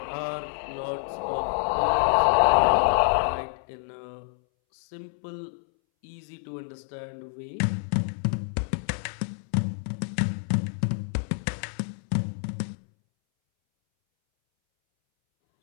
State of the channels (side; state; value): right; silent; 60 dB below the other